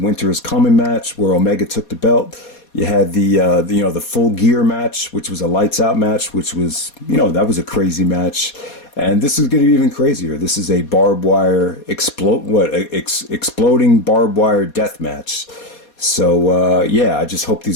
is Coming match where Omega took the belt. You had the Full Gear match, which was a lights out match, which was, that was a crazy match. And this is going to be even crazier. This is a barbed wire exploding barbed wire death match. So, I just hope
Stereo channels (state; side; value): late; right; 4.2 ms